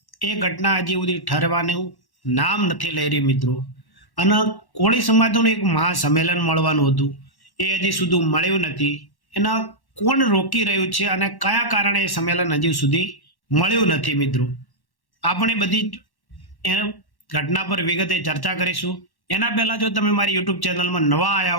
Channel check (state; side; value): late; right; 1.1 ms